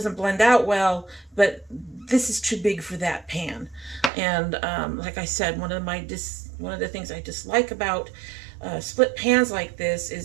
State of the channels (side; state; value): left; drops out; at 4.1 s